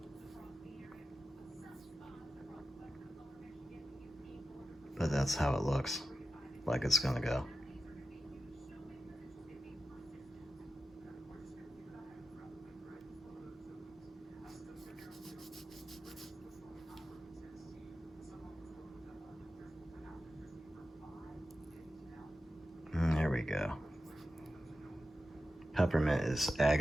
But that's how it looks like it's gonna go. There we go. Peppermint is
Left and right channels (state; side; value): normal; both; correlation 0.91